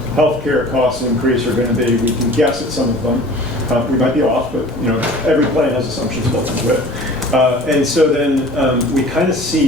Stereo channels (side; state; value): both; normal; correlation 0.44